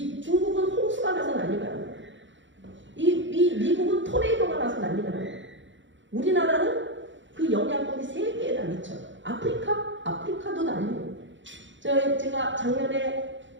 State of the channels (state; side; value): late; left; 0.54 ms